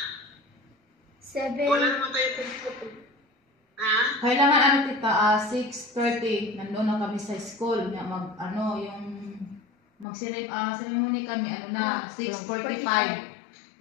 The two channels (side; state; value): right; drops out; at 10.1 s